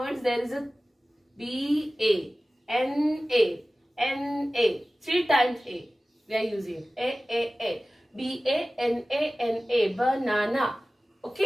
words there is a BANA. 3 times A. We are using A. BANANA, banana.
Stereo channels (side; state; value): both; normal; correlation 0.97